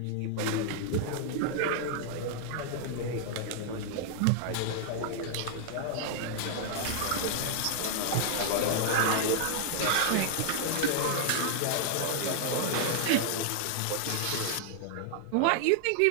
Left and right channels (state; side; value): different; both; correlation -0.01